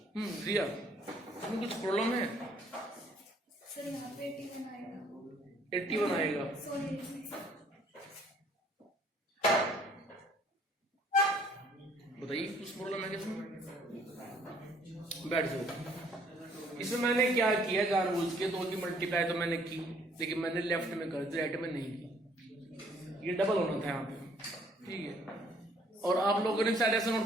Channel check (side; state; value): both; normal; correlation 0.61